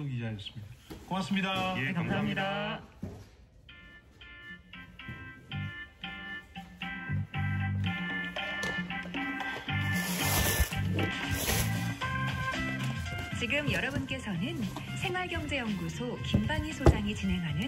기자였습니다. 고맙습니다. 예, 감사합니다. 지금 여러분께서는 생활경제연구소 김방희 소장이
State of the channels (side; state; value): both; identical; correlation 1.00